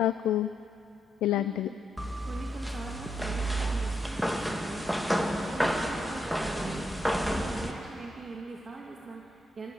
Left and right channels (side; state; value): both; normal; correlation 0.79